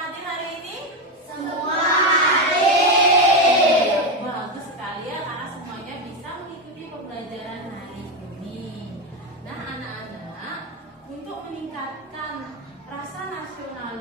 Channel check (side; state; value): both; normal; correlation 0.12